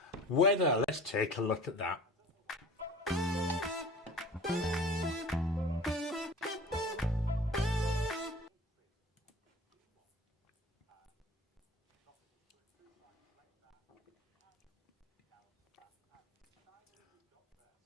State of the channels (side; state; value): both; normal; correlation 0.41